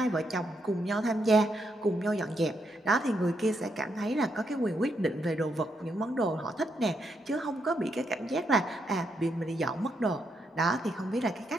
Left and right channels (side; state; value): both; normal; correlation 0.79